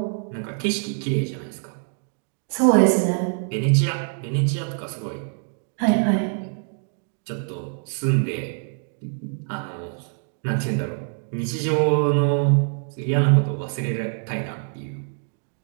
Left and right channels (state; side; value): silent; left; 57 dB below the other